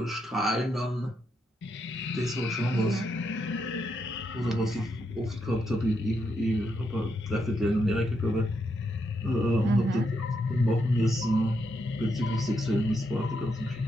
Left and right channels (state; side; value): normal; both; correlation 0.80